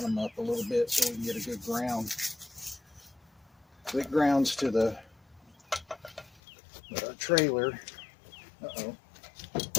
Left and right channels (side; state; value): right; drops out; at 6.4 s